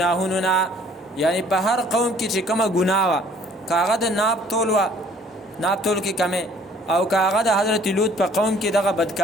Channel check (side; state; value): both; normal; correlation 0.56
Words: نه. یعنی په هر قوم کې چې کومه ګناه وه کاغه د ناب تول وه ناب تول کې کمې او کاغه د حضرت لوط په قوم کې دغه